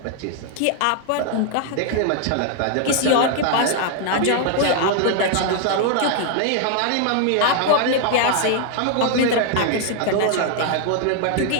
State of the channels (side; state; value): both; different; correlation 0.00